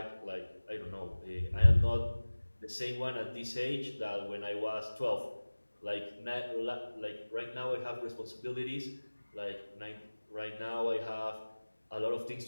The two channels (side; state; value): both; inverted; correlation -1.00